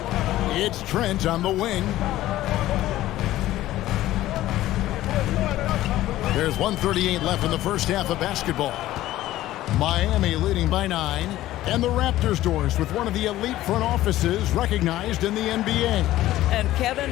It's Trent on the wing. There's 1:38 left in the first half of basketball. Miami leading by 9. And the Raptors doors with one of the elite front offices recognized in the NBA. And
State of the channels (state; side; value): quieter; right; 15.0 dB